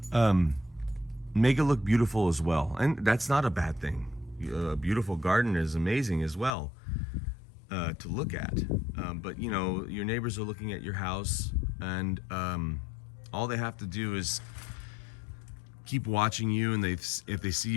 make it look beautiful as well. And that's not a bad thing. A beautiful garden is amazing as well to look at. But your neighbors are looking at your house, and all they have to do is keep watching you, and if they see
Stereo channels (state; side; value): drops out; right; at 6.5 s